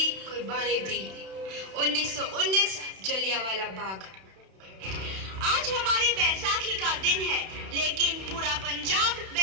कुर्बानी दी। 1919 जलियांवाला बाग। आज हमारी बैसाखी का दिन है, लेकिन पूरा पंजाब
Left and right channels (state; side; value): late; left; 31 ms